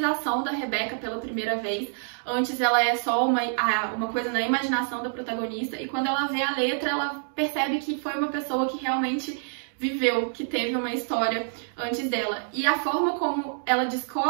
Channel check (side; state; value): left; silent; digital silence